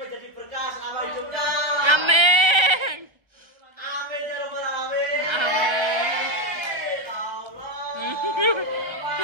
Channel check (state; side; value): late; left; 1.3 ms